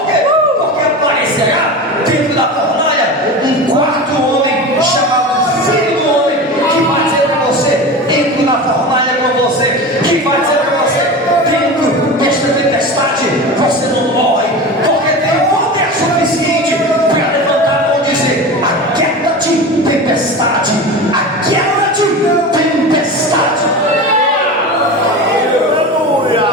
quê? Porque aparecerá dentro da fornalha um quarto homem chamado Filho do Homem, que vai dizer para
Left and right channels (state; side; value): normal; both; correlation 0.29